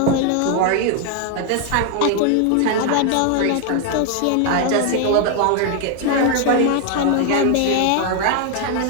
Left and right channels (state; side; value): different; both; correlation 0.01